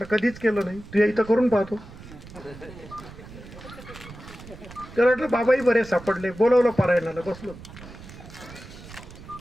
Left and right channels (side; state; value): right; noise; rumble, 16 dB below the sound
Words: कधीच केलं नाही. तू इथं करून पाहतो. तर म्हटलं बाबाही बरे सापडले, बोलवलं पारायणाला, बसलो,